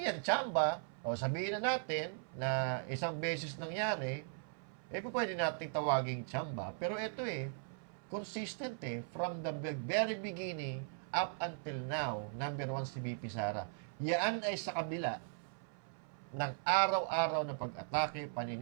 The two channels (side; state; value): left; silent; 52 dB below the other